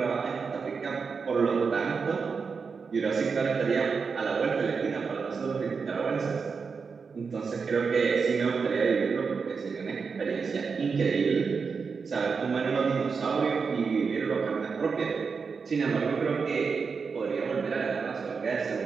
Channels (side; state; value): left; quieter; 5.3 dB